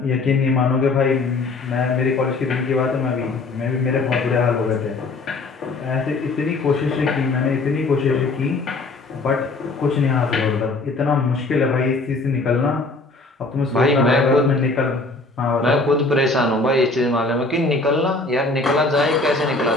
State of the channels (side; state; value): right; quieter; 3.4 dB